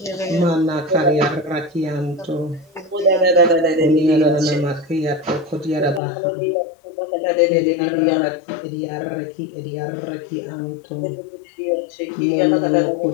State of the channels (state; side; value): drops out; right; at 6.0 s